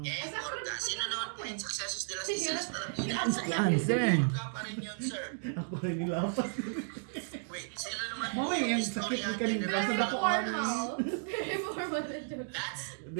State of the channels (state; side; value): silent; left; digital silence